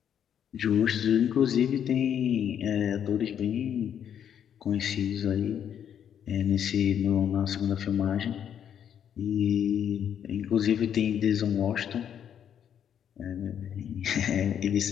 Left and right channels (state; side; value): quieter; right; 9.0 dB